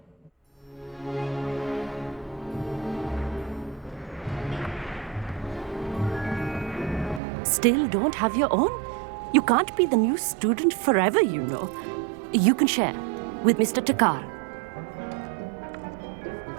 Still don't have your own? You can't be the new student forever, you know. You can share with Mr. Takar.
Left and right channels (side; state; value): left; drops out; at 7.2 s